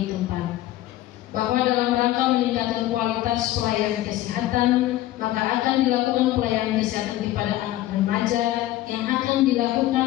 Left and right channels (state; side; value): quieter; right; 15.0 dB